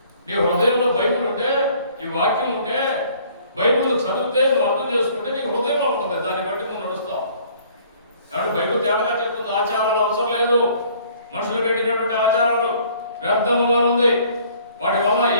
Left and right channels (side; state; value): both; inverted; correlation -0.57